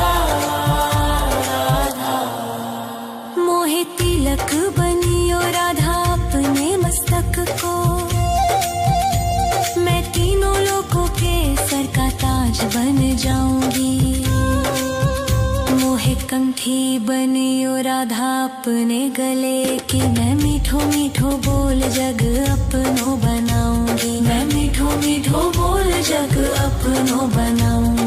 राधा। मोहे तिलक बनियो राधा अपने मस्तक को। मैं तीनों लोगों के सर का ताज बन जाऊंगी। मोहे कंठी बनियो राधा अपने गले की। मैं मीठो मीठो बोल जग अपनो बनाऊंगी। मैं मीठो मीठो बोल जग अपनो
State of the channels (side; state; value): both; identical; correlation 1.00